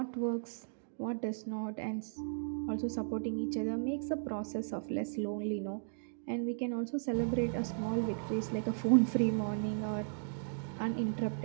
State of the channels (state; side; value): silent; left; digital silence